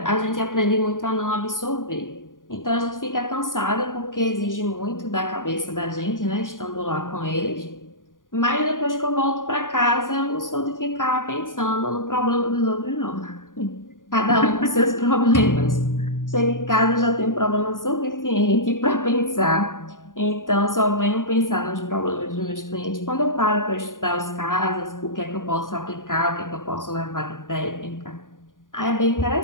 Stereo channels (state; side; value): late; right; 0.89 ms